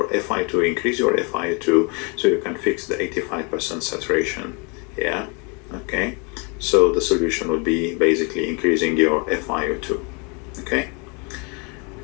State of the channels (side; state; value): right; quieter; 33.0 dB